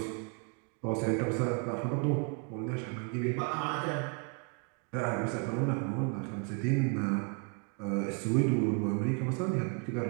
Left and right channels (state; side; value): quieter; left; 36.9 dB